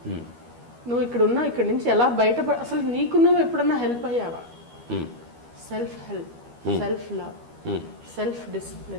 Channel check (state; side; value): late; left; 12 ms